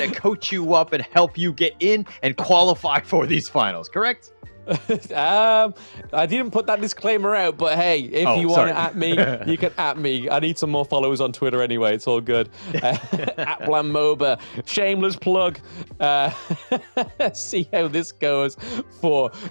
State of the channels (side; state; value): both; inverted; correlation -1.00